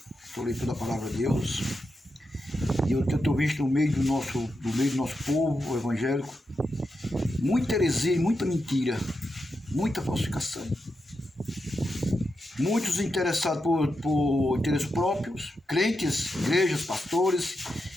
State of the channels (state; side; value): normal; both; correlation 0.87